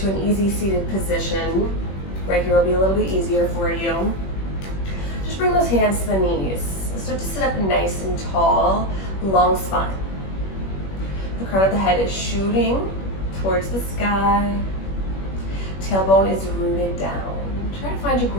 an easy seated position. Right here will be a little bit easier for you. Just bring those hands to the knees. Start to sit up nice and tall, long spine. The crown of the head is shooting towards the sky. Tailbone is rooted down. Try to find your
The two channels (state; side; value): late; right; 21 ms